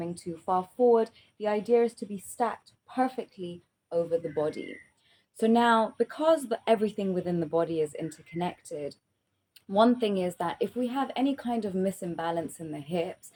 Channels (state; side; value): identical; both; correlation 1.00